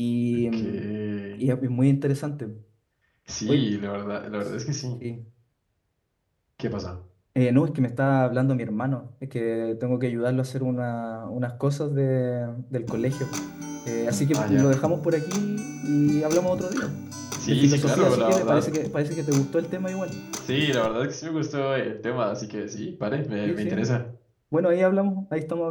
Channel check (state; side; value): identical; both; correlation 1.00